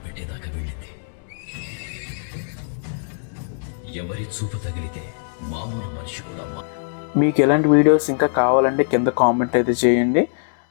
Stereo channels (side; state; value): right; silent; digital silence